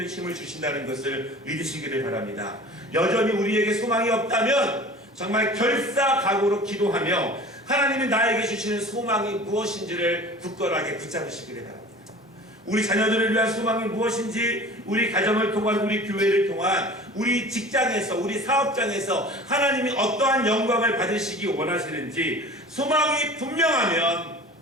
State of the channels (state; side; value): normal; both; correlation 0.41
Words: 힘을 주신다는 것을 믿으시기를 바랍니다. 여전히 우리에게 소망이 없다면 정말 결사각오로 기도하며 하나님이 나에게 주시는 소망이 무엇인지를 굳건하게 붙잡으시기를 바랍니다. 우리 자녀들을 위한 소망이 무엇인지 우리 가정을 통한 우리 교회를 통한 우리 직장에서 우리 사업장에서 하나님이 어떠한 영광을 받으시기 원하시는지 소망이 분명하면